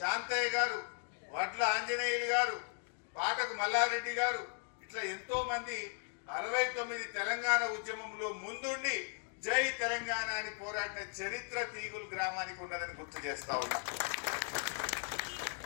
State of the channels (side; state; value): right; silent; 53 dB below the other